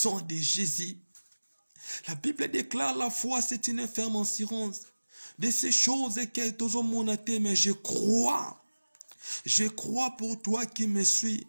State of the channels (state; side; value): inverted; both; correlation -1.00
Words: de Jésus. La Bible déclare la foi, c'est une ferme assurance de ces choses que tous ont monté, mais je crois pour toi qui me suis,